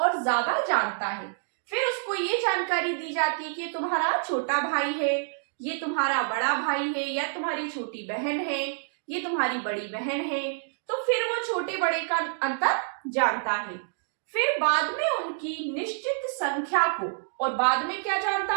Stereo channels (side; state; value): left; silent; digital silence